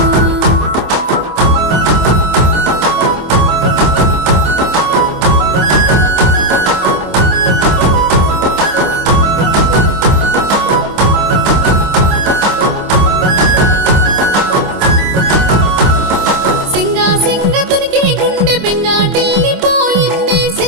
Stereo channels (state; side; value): late; left; 25 ms